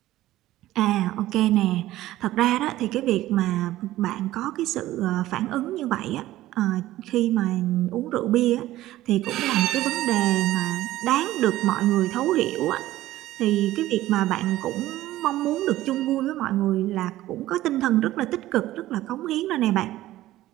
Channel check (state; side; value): quieter; left; 15.4 dB